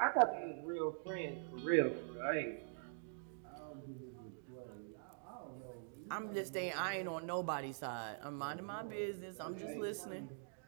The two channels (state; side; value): silent; left; digital silence